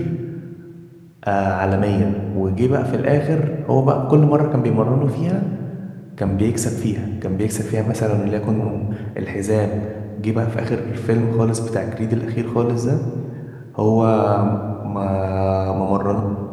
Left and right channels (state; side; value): identical; both; correlation 1.00